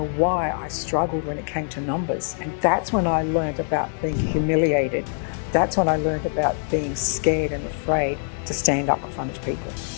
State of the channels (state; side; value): silent; right; 60 dB below the other